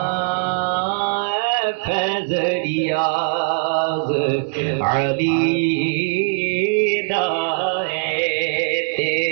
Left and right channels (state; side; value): silent; left; digital silence